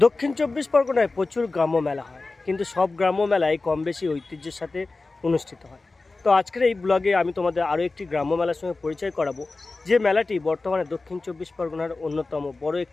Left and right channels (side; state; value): right; quieter; 3.5 dB